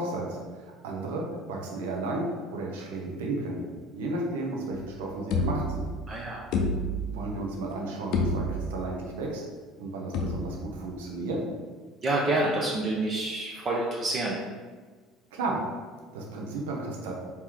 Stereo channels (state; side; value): normal; both; correlation 0.41